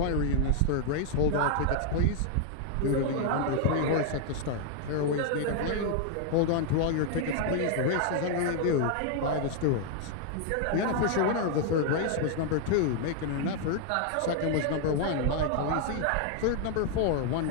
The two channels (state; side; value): different; both; correlation 0.00